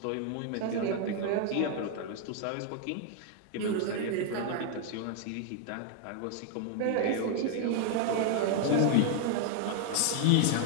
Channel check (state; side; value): different; both; correlation 0.00